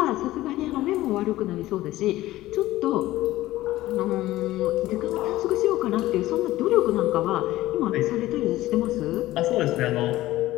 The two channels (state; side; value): quieter; right; 16.2 dB